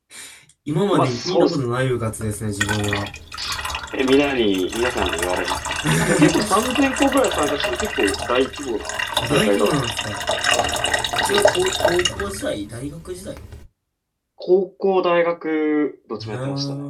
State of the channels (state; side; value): identical; both; correlation 1.00